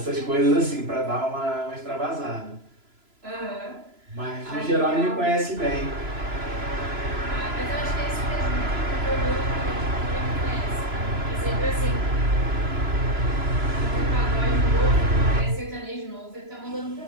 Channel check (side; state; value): left; late; 3.0 ms